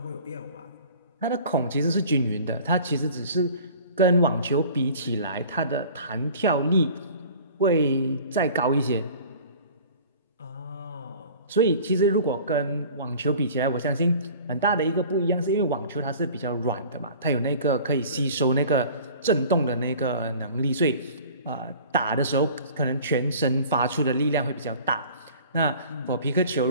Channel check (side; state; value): both; inverted; correlation -0.45